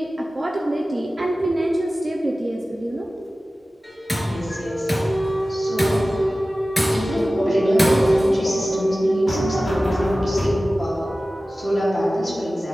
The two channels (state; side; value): normal; both; correlation 0.96